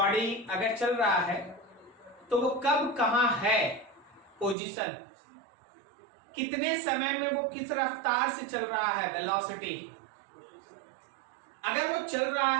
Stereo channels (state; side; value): drops out; left; at 4.5 s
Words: अगर चल रहा है तो वो कब कहां है पोजीशन, कितने समय में वो किस रफ्तार से चल रहा है, वेलोसिटी। अगर वो चल रहा